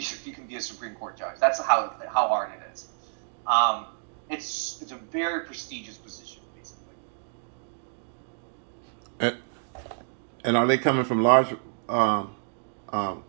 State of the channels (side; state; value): left; silent; digital silence